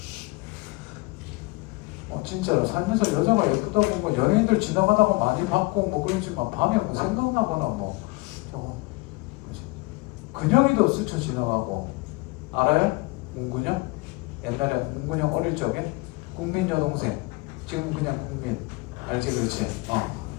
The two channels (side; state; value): right; quieter; 24.5 dB